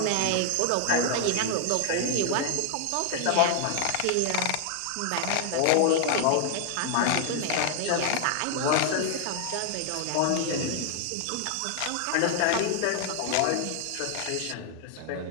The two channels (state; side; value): different; both; correlation 0.00